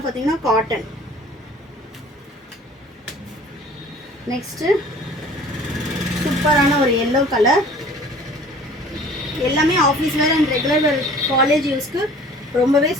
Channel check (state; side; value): normal; both; correlation 0.48